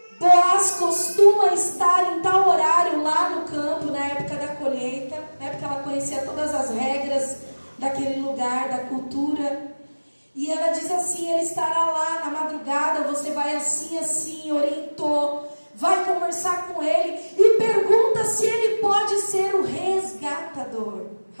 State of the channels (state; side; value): inverted; both; correlation -1.00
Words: Boaz costuma estar em tal horário lá no campo, na época da colheita, né, porque ela conhecia todas as regras daquele lugar, da cultura. E ela diz assim: ele estará lá na madrugada, você vai assim, assim, orientou, vai conversar com ele e pergunta se ele pode ser o resgatador.